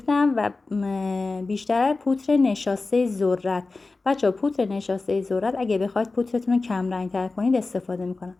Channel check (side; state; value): right; quieter; 3.6 dB